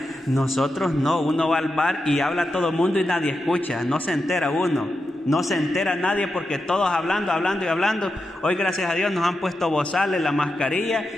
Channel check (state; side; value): normal; both; correlation 0.88